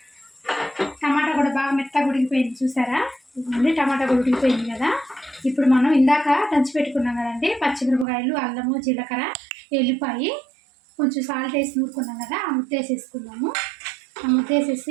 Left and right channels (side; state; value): left; drops out; at 8.1 s